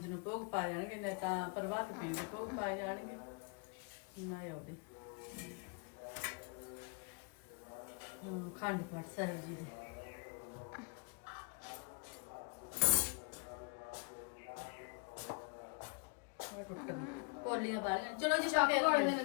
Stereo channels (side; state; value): right; quieter; 34.3 dB